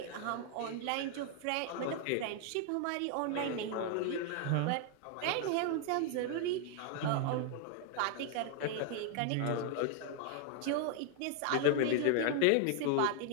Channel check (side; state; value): both; different; correlation 0.00